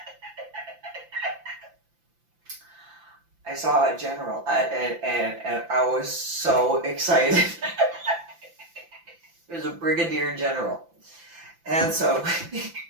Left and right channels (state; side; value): late; left; 5.9 ms